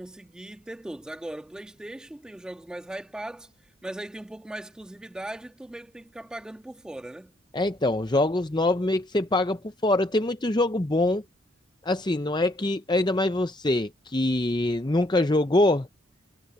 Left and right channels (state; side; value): normal; both; correlation 0.69